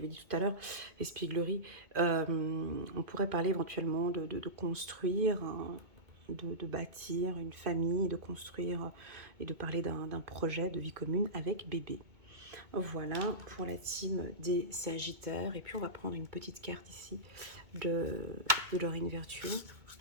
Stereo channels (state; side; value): late; left; 2.2 ms